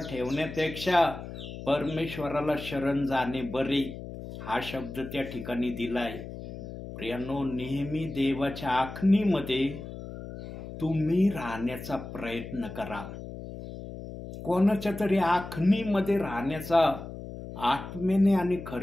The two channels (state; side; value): noise; left; hum, 11 dB below the sound